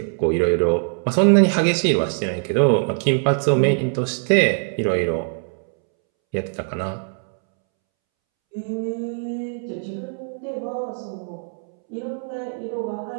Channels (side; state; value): left; silent; 64 dB below the other